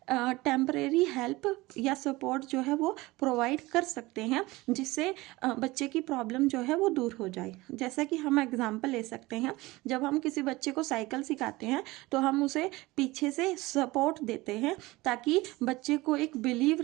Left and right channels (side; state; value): left; quieter; 20.6 dB